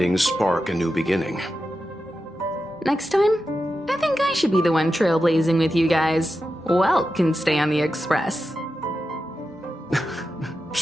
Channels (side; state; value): both; normal; correlation 0.90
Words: spark a new beginning. Next time, I think I should be the one trailblazing with you guys. Welt can stay on the Express.